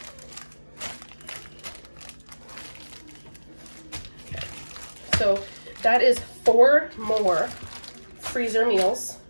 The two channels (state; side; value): inverted; both; correlation -1.00